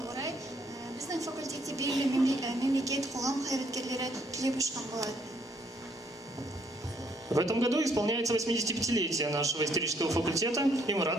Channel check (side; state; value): both; normal; correlation 0.68